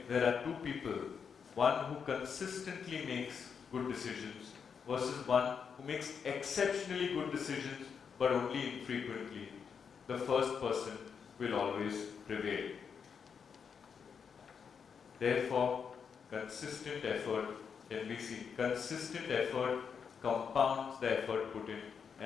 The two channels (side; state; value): right; quieter; 6.5 dB